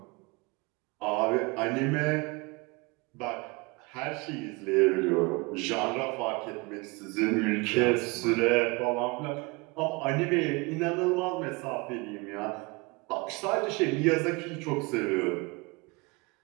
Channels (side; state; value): left; quieter; 26.7 dB